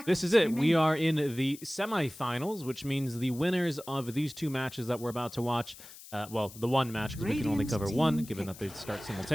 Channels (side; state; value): left; noise; hiss, 17 dB below the sound